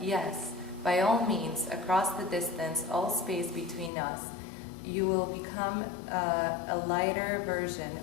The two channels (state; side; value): drops out; right; at 3.9 s